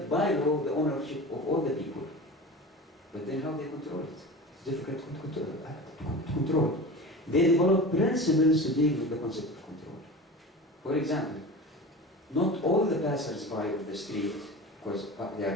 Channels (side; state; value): both; normal; correlation 0.33